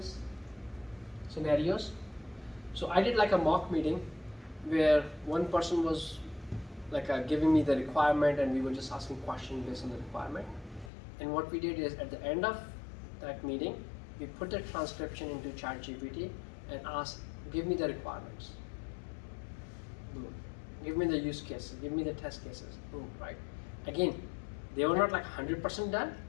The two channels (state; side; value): drops out; right; at 10.9 s